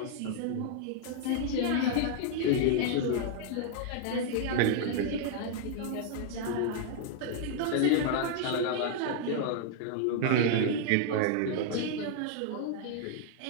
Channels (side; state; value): both; different; correlation -0.01